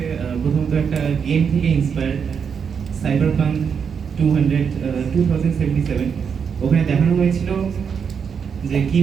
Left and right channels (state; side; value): quieter; left; 6.7 dB